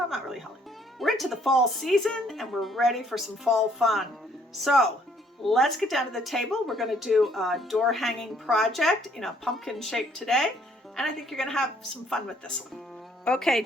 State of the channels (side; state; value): both; normal; correlation 0.64